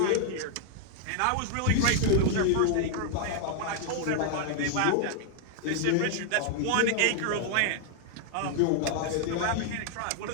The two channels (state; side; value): different; both; correlation 0.00